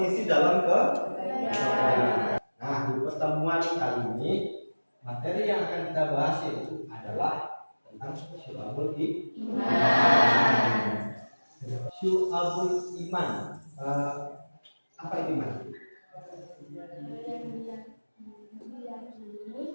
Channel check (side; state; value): both; inverted; correlation -1.00